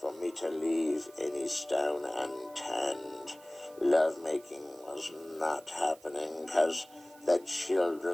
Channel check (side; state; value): right; noise; hiss, 25 dB below the sound